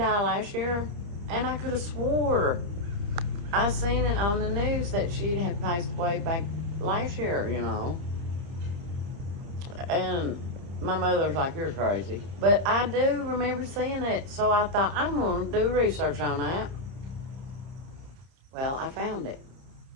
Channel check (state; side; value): late; left; 30 ms